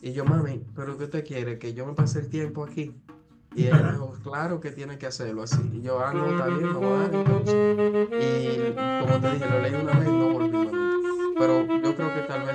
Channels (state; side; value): identical; both; correlation 1.00